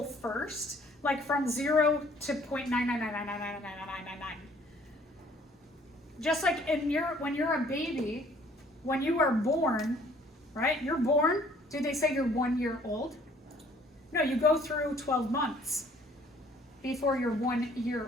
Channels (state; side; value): normal; both; correlation 0.58